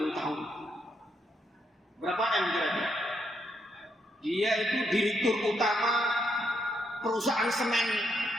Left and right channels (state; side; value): normal; both; correlation 0.78